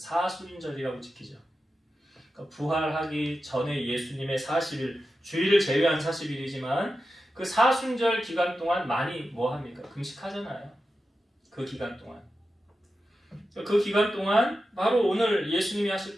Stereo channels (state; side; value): normal; both; correlation 0.91